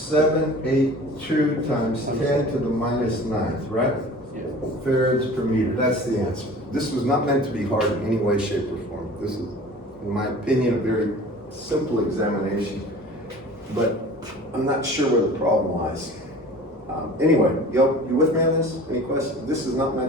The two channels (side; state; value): both; normal; correlation 0.43